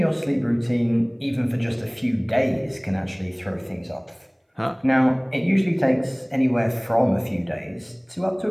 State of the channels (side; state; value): both; identical; correlation 1.00